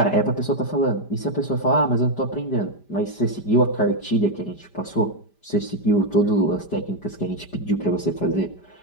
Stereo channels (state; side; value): late; right; 5.0 ms